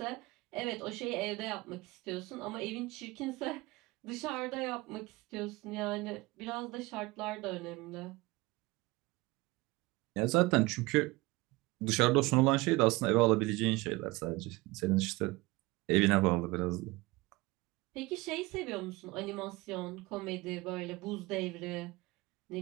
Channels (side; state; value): left; quieter; 21.8 dB